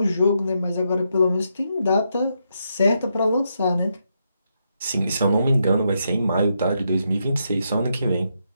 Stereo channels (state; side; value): inverted; both; correlation -0.81